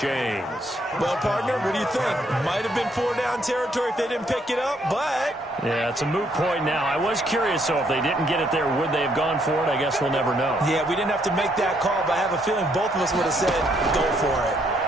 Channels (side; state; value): both; normal; correlation 0.71